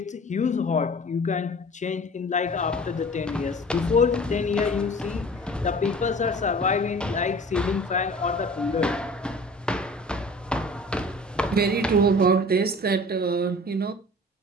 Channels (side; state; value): both; normal; correlation 0.43